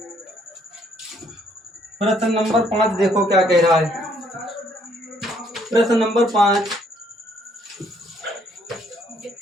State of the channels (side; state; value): both; normal; correlation 0.66